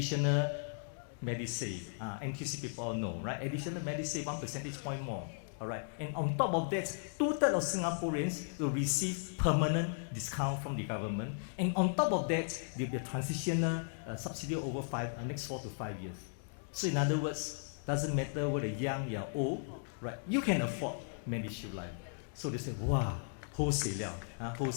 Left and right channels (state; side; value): silent; right; digital silence